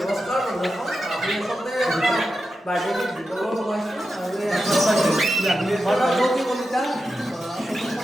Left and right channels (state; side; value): normal; both; correlation 0.90